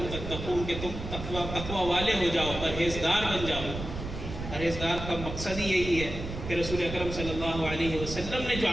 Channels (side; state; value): right; noise; rumble, 7 dB below the sound